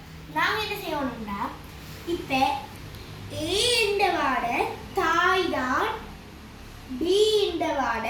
நாங்கள் என்ன செய்யணும்னா, இப்போ ஏ இந்த வாட தாய் தான், பி இந்த வாட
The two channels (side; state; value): both; identical; correlation 1.00